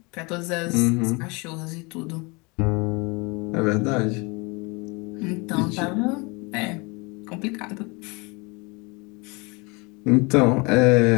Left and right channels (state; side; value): quieter; right; 28.3 dB